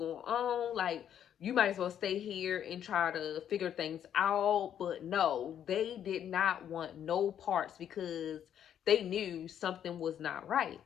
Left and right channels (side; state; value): right; quieter; 9.6 dB